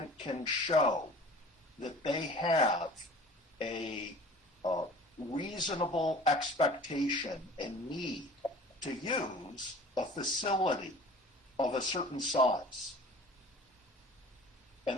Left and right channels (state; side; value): normal; both; correlation 0.45